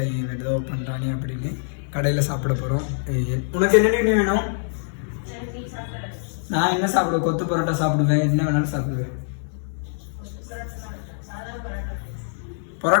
ஏதோ பண்ணுறானே அப்படின்னு. கடையில் சாப்பிட போகிறோம். உனக்கு என்ன வேணும்? நான் என்ன சாப்பிடுவேன்? கொத்து பரோட்டா சாப்பிடுவேன். என்ன வேணாலும் சாப்பிடுவேன்.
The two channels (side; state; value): right; silent; 63 dB below the other